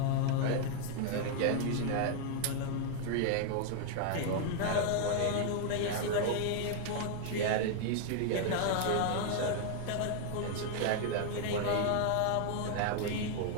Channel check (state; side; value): different; both; correlation 0.00